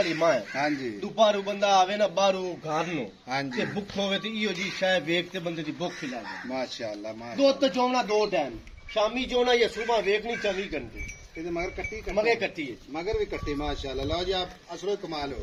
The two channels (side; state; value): both; identical; correlation 1.00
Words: मां है हां जी दुपारू बंदा आवे ना बारू घर नो हां जी ते भुख होवे ते इहो जी शाय वेख ते बंदे दी भुख ही लागे माशाअल्लाह दो तो चौना दो टाइम शामी चौना या सुबह वेखनी 24 घंटे ਇਹਦੇ ਮਗਰ ਕੱਟੀ मगे कट्टी है मगर भी कट्टी माशाअल्लाह लो जी आप असलो कमाल